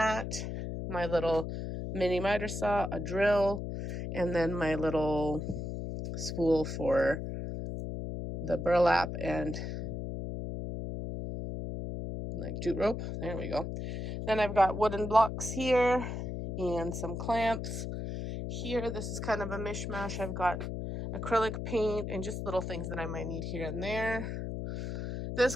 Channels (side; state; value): left; noise; hum, 5 dB below the sound